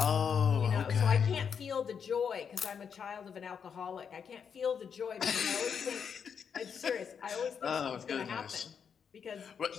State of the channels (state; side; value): quieter; right; 7.0 dB